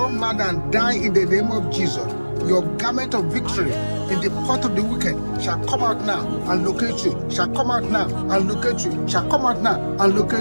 mad and die in the name of Jesus. Your garment of victory in the pot of the wicked shall come out now and locate you, shall come out now and locate you, shall come out now and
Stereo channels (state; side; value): inverted; both; correlation -1.00